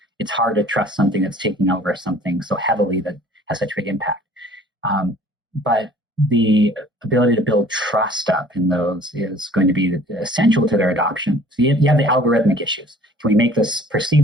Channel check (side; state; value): both; normal; correlation 0.51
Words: it's hard to trust something that's taking over something so heavily that has such big impact. But the ability to build trust up in those is going to be essential to their adoption. So you have the algorithmic issues. Can we make this